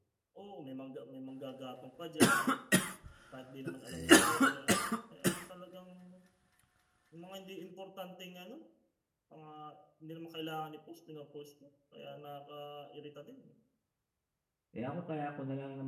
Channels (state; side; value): identical; both; correlation 1.00